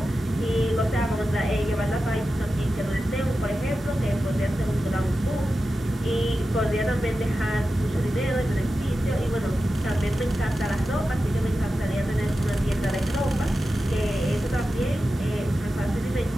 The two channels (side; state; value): both; normal; correlation 0.92